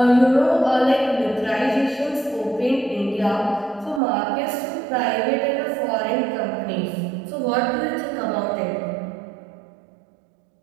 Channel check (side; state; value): left; drops out; at 4.0 s